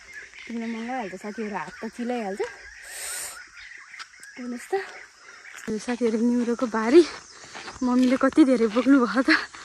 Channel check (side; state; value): both; identical; correlation 1.00